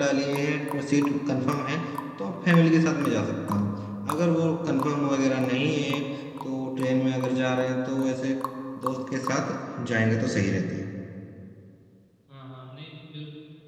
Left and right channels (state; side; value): identical; both; correlation 1.00